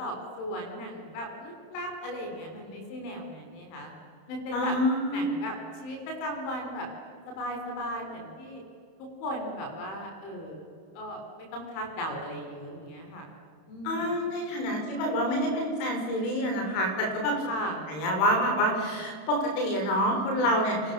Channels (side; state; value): right; late; 31 ms